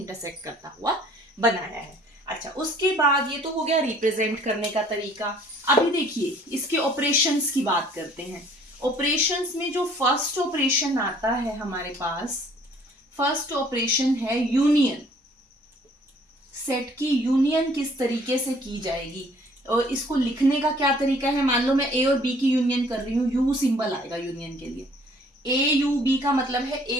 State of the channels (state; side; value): normal; both; correlation 0.57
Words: करता हुआ बनाया है। अच्छा, उसके बाद ये तो हो गया रिप्रेजेंट करने का तरीका। अभी देखिए, इसके ऑपरेशंस की बात करते हैं। ऑपरेशंस में जो फर्स्ट ऑपरेशन आता है हमारे पास, फर्स्ट ऑपरेशन है यूनियन। सेट की यूनियन किस तरीके से की जाएगी और इसको लिखने का क्या तरीका है। मान लो मैं ए और बी की यूनियन कर रही हूँ, यू सिंबल आएगा यूनियन के लिए। ए यू बी का मतलब है